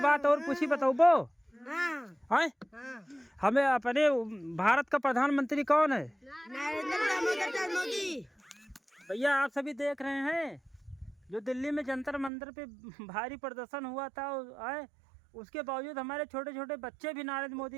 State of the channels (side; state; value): left; drops out; at 12.3 s